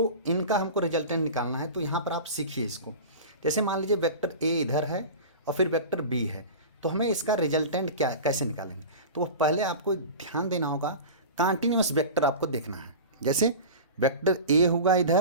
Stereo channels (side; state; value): both; inverted; correlation -0.32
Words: इनका हमको रिजल्टेंट निकालना है। तो यहाँ पर आप सीखिए इसको। जैसे मान लीजिए वेक्टर ए इधर है और फिर वेक्टर बी है, तो हमें इसका रिजल्टेंट क्या कैसे निकालेंगे, तो वो पहले आपको ध्यान देना होगा, कॉन्टिन्यूअस वेक्टर आपको देखना है। जैसे वेक्टर ए होगा